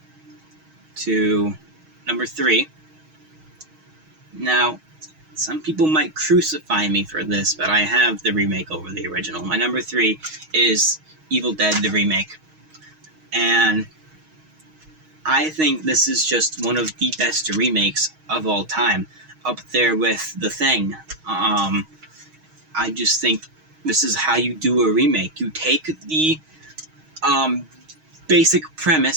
to number 3. Now, some people might crucify me for this, but I have the remake over the original. My number 3 is Evil Dead, the remake. And I think this is just one of the best remakes of all time, up there with The Thing. I just think this is how you do a remake. You take the basic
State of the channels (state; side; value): late; left; 6.4 ms